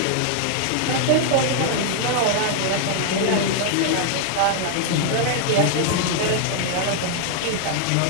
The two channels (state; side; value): different; both; correlation 0.00